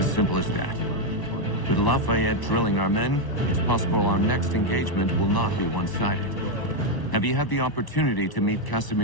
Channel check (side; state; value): right; late; 1.0 ms